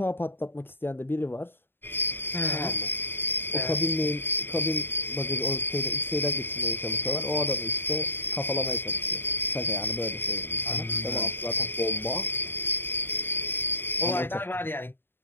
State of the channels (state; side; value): late; right; 0.10 ms